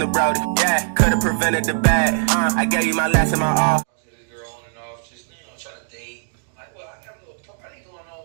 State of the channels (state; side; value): silent; left; digital silence